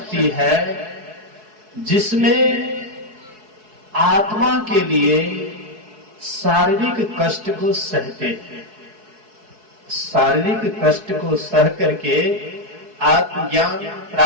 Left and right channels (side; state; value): left; late; 4.7 ms